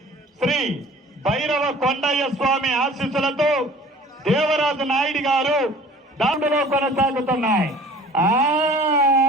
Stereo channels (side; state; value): both; normal; correlation 0.48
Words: శ్రీ భైరవ కొండయ్య స్వామి ఆశీస్సులతో దేవరాజు నాయుడు గారు దాంట్లో కొనసాగుతున్నాయి.